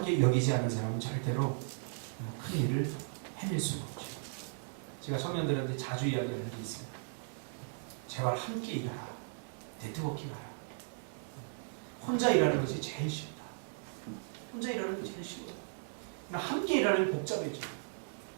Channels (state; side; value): silent; left; digital silence